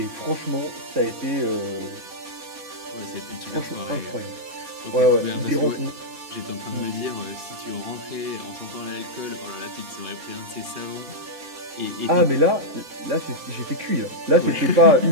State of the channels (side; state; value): left; late; 4.2 ms